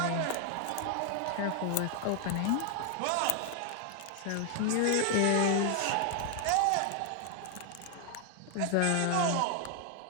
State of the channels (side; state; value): both; different; correlation 0.00